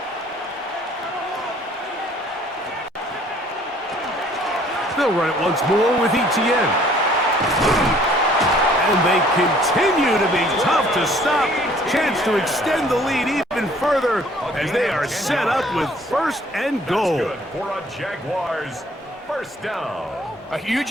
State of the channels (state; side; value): normal; both; correlation 0.57